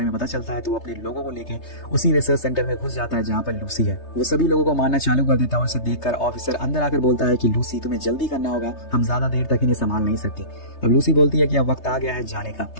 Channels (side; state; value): right; late; 3.3 ms